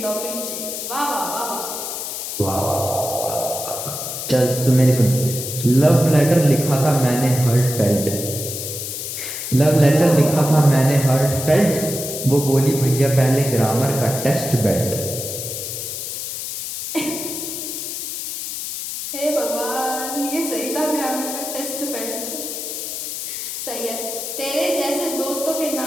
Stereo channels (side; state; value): left; noise; hiss, 6 dB below the sound